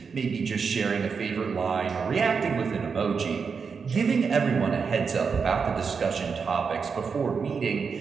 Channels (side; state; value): left; quieter; 5.6 dB